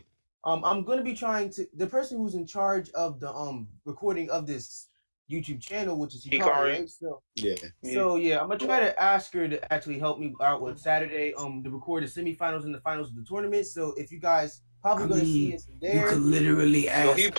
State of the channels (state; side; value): inverted; both; correlation -1.00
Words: I'm going to be trying to the person who's in charge of the recording of this YouTube channel, which is Hikari, right? So I'm gonna try to ask her to actually help me out with Saturday to record the semifinals and the finals of the tournament. So if you guys probably gonna see us there, you could literally ask. Yo, he